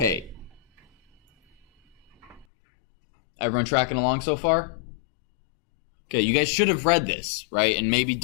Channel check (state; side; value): drops out; right; at 2.5 s